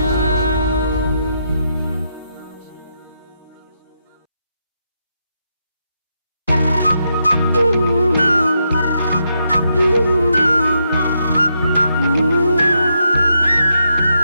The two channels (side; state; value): both; inverted; correlation -0.81